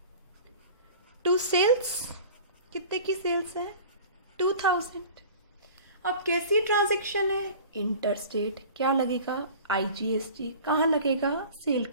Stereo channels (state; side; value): inverted; both; correlation -0.41